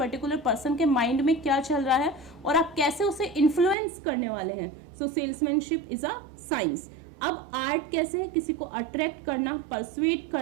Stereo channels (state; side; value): drops out; left; at 3.8 s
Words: पर्सन के माइंड में क्या चल रहा है और आप कैसे उसे इन्फ्लुएंस करने वाले हैं। सो सेल्समैनशिप इज अ साइंस। अब आर्ट कैसे है, किसी को अट्रैक्ट करना, परसुएट